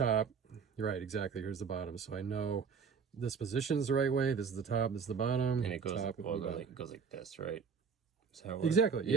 You're right, exactly. Here's the bottom. So I know this position is the right way. This is the top, this is the bottom. And it goes, top, well, bottom. it goes like this, right? Is that how it works? Exactly.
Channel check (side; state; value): left; quieter; 6.1 dB